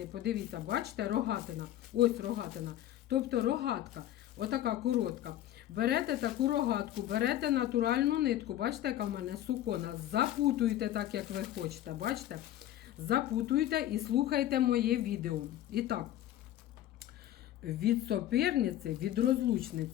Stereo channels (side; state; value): right; quieter; 12.9 dB